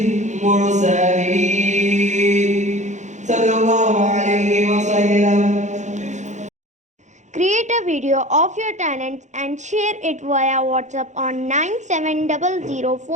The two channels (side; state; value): left; late; 0.34 ms